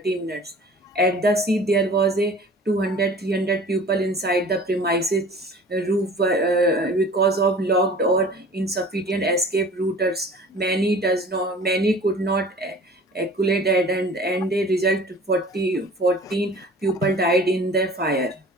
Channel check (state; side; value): normal; both; correlation 0.45